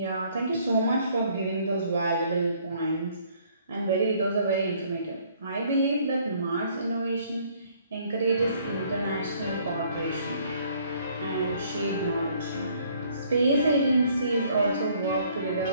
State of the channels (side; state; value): both; inverted; correlation -0.62